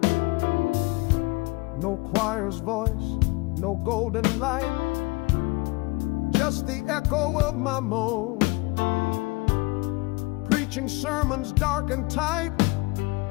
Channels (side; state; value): right; quieter; 24.9 dB